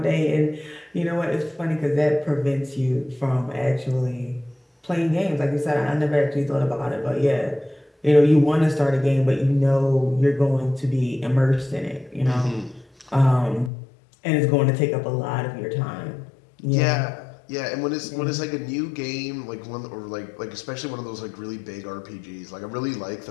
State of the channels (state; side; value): drops out; right; at 13.7 s